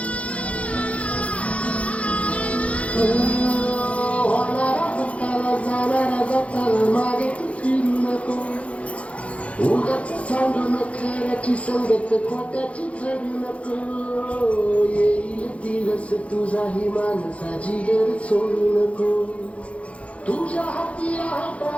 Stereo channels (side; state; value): right; late; 0.063 ms